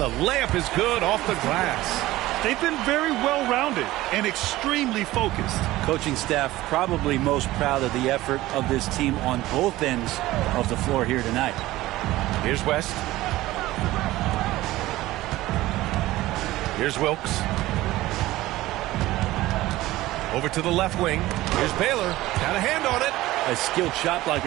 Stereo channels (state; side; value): quieter; left; 17.1 dB